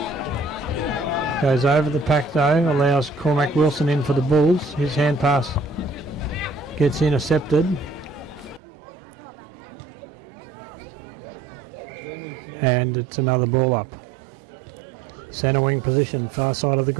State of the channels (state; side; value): drops out; left; at 8.6 s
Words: Goes over the pack though, allows Cormac Wilson in for the Bulls. His hand pass gets intercepted. And it's another ball up. Centre wing position, far side of the